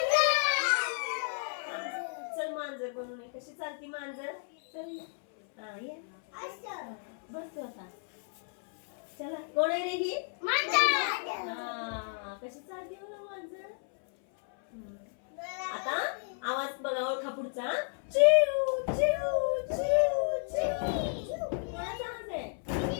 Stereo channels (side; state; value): right; silent; 56 dB below the other